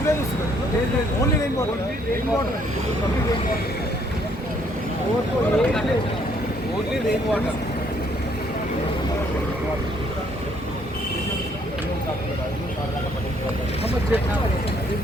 వస్తుంది. Only rain water. Only rain water.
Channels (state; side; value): normal; both; correlation 0.66